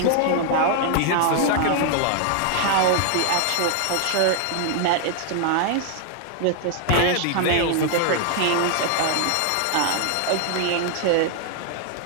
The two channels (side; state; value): both; different; correlation 0.00